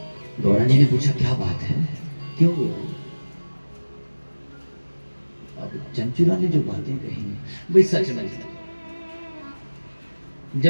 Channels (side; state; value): both; inverted; correlation -1.00